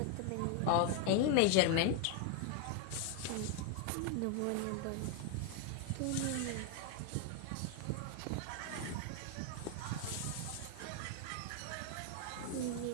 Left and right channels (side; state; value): both; different; correlation 0.01